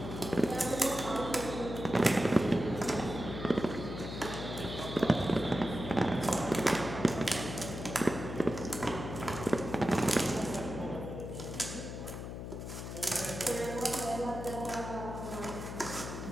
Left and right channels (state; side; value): noise; left; hum, 7 dB below the sound